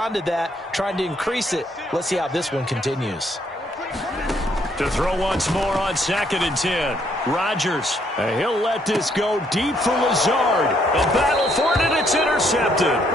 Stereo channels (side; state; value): both; normal; correlation 0.70